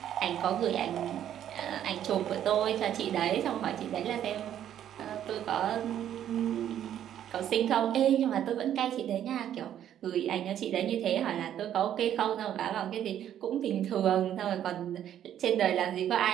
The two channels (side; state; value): left; quieter; 10.6 dB